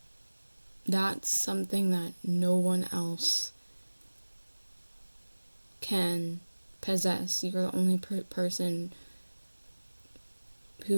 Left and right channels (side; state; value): both; inverted; correlation -1.00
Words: that's something that no one else can possess. You're the only person